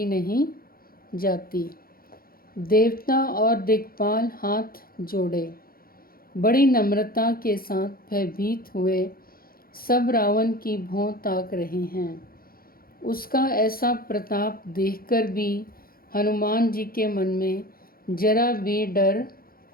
नहीं जाती। देवता और दिक्पाल हाथ जोड़े बड़ी नम्रता के साथ भयभीत हुए सब रावण की भौं ताक रहे हैं। उसका ऐसा प्रताप देखकर भी हनुमान जी के मन में जरा भी डर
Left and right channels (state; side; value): late; right; 0.43 ms